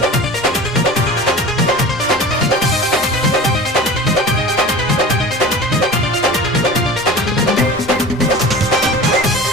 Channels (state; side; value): normal; both; correlation 0.37